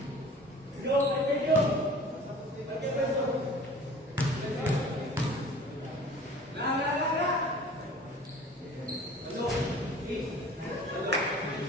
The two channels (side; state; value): both; normal; correlation 0.45